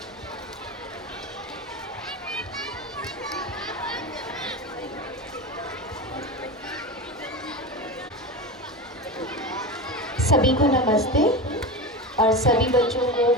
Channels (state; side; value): normal; both; correlation 0.23